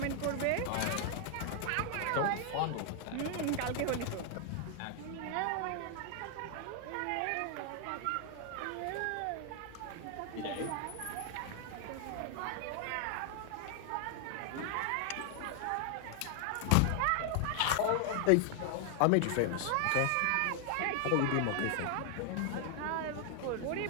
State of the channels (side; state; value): both; different; correlation 0.00